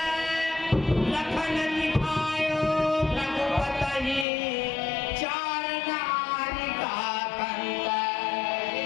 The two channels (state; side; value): drops out; right; at 4.2 s